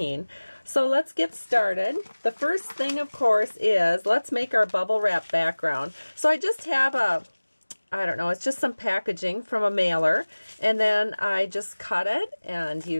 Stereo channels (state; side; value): inverted; both; correlation -1.00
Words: So let's get started. The first thing, of course, is let's make our bubble wrap background. So I just have it's just some packaging from a mailer, and then I just cut it, and